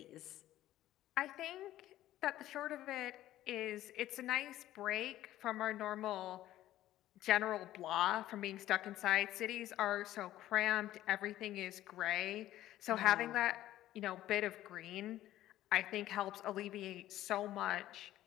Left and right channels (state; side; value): quieter; right; 14.0 dB